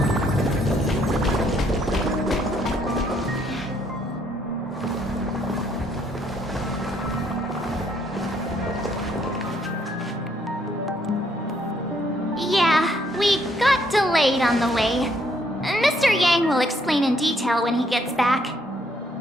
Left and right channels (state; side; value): normal; both; correlation 0.69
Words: Yeah, we got delayed on the way. Mr. Yang will explain in detail when he gets back.